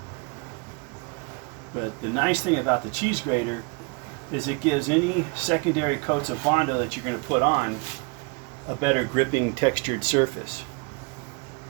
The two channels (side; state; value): left; quieter; 31.4 dB